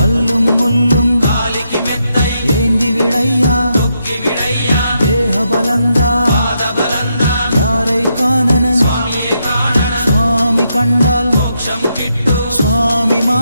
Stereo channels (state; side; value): inverted; both; correlation -0.80